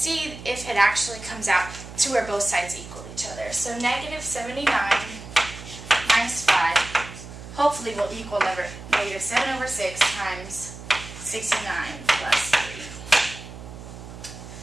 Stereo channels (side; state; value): right; noise; hum, 13 dB below the sound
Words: if it actually comes out to where both sides equal each other. So -79 minus 5 hopefully will equal -7 over 6 times 69 plus 3.